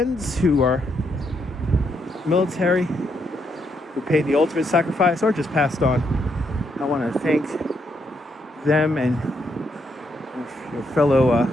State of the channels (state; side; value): normal; both; correlation 0.77